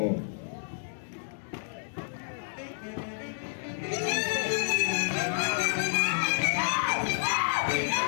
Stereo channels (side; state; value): right; silent; digital silence